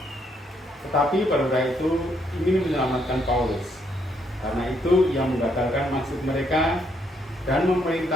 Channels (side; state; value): both; normal; correlation 0.73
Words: Tetapi perwira itu ingin menyelamatkan Paulus. Karena itu ia menggagalkan maksud mereka dan